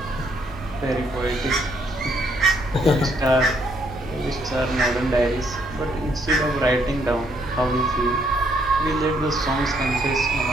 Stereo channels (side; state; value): both; normal; correlation 0.71